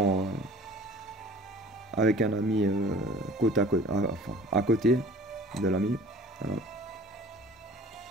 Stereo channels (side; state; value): both; normal; correlation 0.46